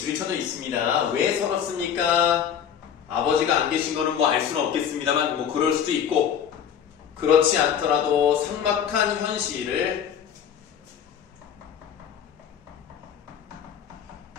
쳐져 있습니다. 왜 서럽습니까? 아버지가 안 계신 거는 뭐 알 수는 없겠습니다만 뭐 그럴 수도 있고 그렇지 않더라도 삭막한 현실을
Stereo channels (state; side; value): quieter; right; 8.5 dB